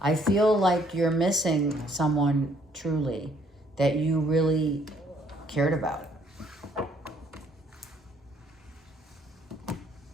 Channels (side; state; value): both; normal; correlation 0.65